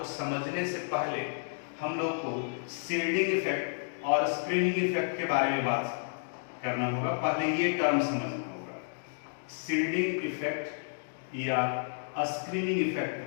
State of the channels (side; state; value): right; silent; digital silence